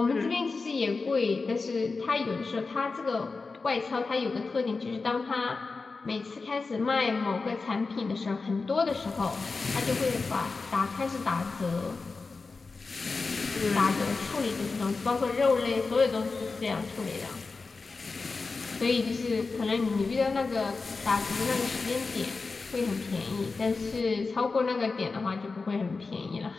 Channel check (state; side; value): quieter; right; 4.1 dB